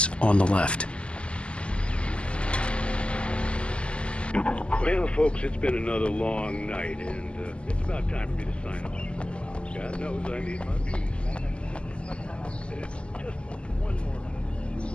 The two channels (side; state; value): right; late; 0.053 ms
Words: on the left. Well, folks, it's been another long night, and it's about time for me to sign off. God knows I need my peace. Just one more.